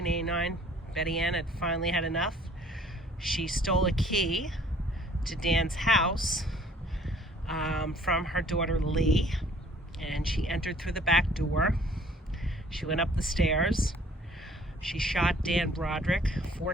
Betty Ann had finally had enough. She stole a key to Dan's house from her daughter Lee, and she entered through the back door. She went up the stairs. She shot Dan Broderick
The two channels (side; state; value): both; normal; correlation 0.56